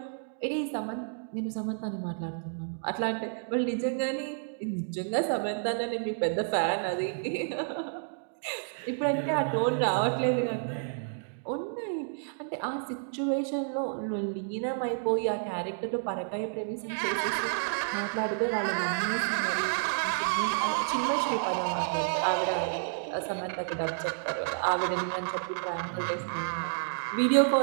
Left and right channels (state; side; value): silent; left; digital silence